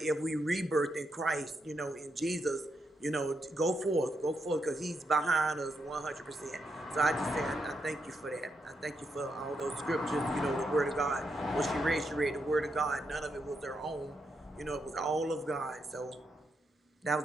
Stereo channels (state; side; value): normal; both; correlation 0.82